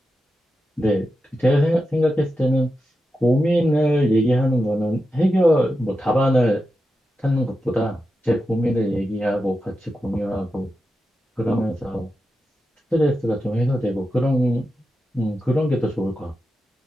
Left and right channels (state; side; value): normal; both; correlation 0.89